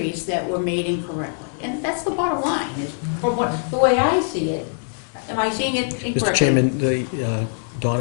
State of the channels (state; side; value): silent; right; digital silence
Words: that were made incorrectly. And that's the bottom line, is the way I see it. Am I seeing it incorrectly? Mr. Chairman,